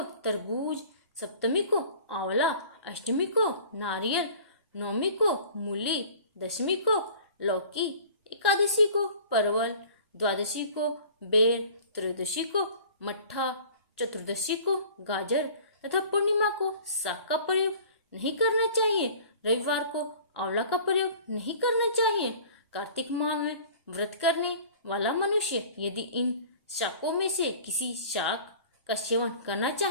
तरबूज, सप्तमी को आंवला, अष्टमी को नारियल, नवमी को मूली, दशमी को लौकी, एकादशी को परवल, द्वादशी को बेर, त्रयोदशी को मट्ठा, चतुर्दशी को गाजर तथा पूर्णिमा को साग का प्रयोग नहीं करना चाहिए। रविवार को आंवला का प्रयोग नहीं करना चाहिए। कार्तिक माह में व्रत करने वाला मनुष्य यदि इन शाकों में से किसी शाक का सेवन करना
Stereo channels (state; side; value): inverted; both; correlation -0.46